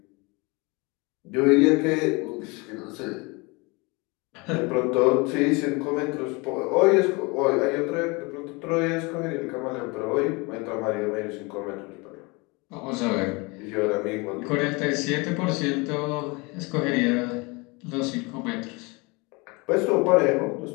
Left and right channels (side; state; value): right; quieter; 27.2 dB